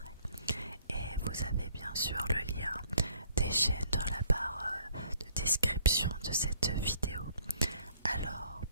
et vous avez bien sûr le lien des chaînes dans la barre de description de cette vidéo. Alors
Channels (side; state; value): both; inverted; correlation -0.59